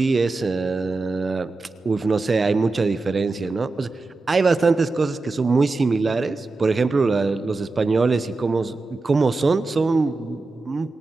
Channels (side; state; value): left; quieter; 3.5 dB